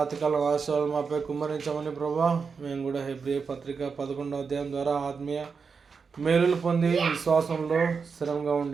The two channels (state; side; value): quieter; left; 5.4 dB